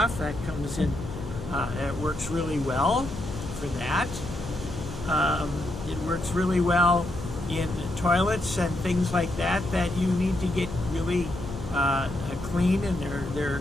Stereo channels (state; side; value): noise; left; hum, 10 dB below the sound